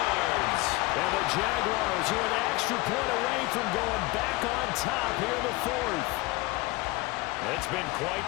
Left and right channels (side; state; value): right; quieter; 22.0 dB